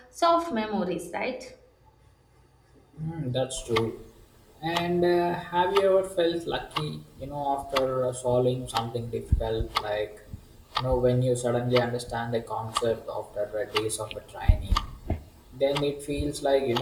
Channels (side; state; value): both; identical; correlation 1.00